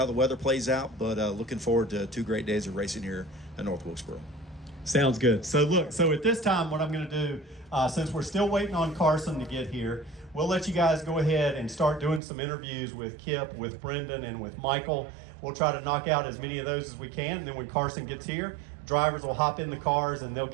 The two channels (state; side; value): drops out; left; at 12.2 s